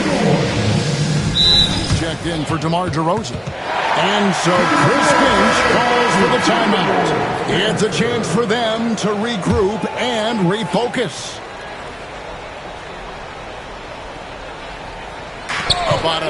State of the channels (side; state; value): both; identical; correlation 1.00